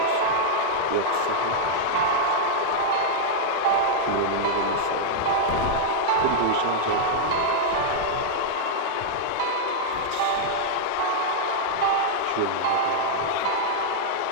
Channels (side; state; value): both; different; correlation -0.01